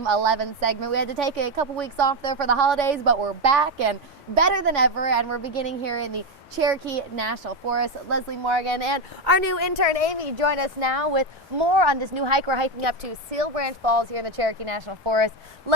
11 segment. We had to take a couple weeks off there for the holidays, but we're back and better than ever, and we're beginning here in the Cherokee National Forest. Leslie Morgan and our new intern Amy join us now with more on this new hike. We're hiking up to Sill Branch Falls here in the Cherokee National Forest.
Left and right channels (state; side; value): normal; both; correlation 0.09